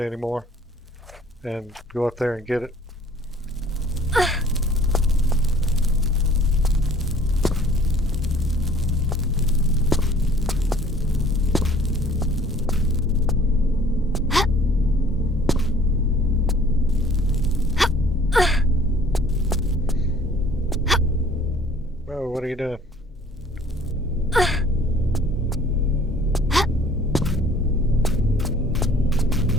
anymore. And go up there and get it. Oh, what are you doing?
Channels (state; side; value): normal; both; correlation 0.53